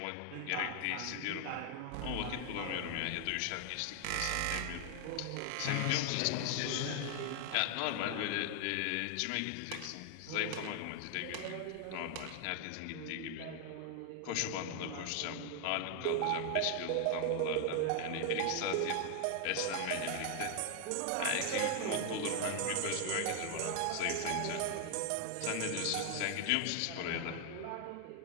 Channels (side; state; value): both; different; correlation 0.00